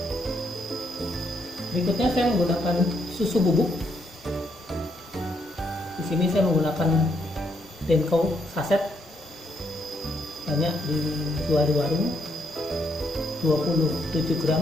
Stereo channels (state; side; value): normal; both; correlation 0.75